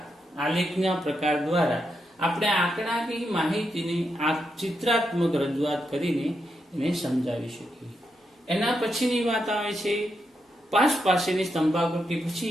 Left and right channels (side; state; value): both; normal; correlation 0.83